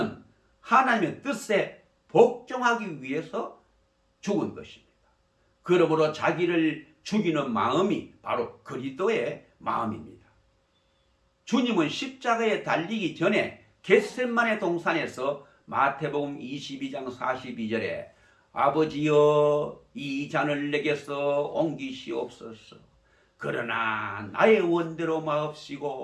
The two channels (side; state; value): both; identical; correlation 1.00